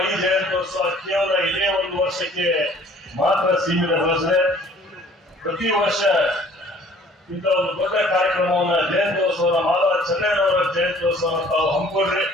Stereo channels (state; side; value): normal; both; correlation 0.54